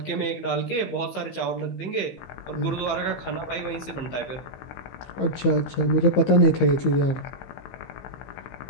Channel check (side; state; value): right; late; 15 ms